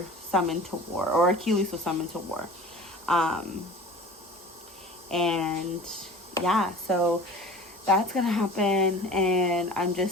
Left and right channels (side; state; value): both; normal; correlation 0.40